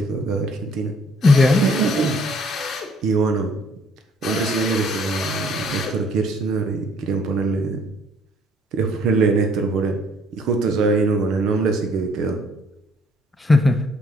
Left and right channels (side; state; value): both; normal; correlation 0.62